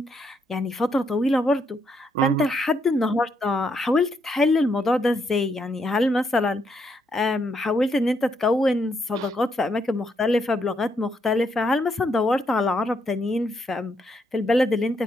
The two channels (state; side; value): normal; both; correlation 0.76